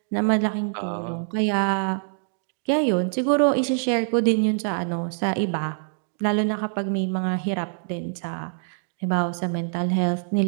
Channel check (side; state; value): left; silent; digital silence